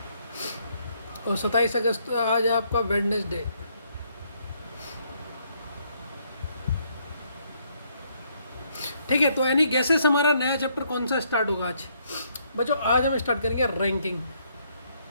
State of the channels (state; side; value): inverted; both; correlation -0.71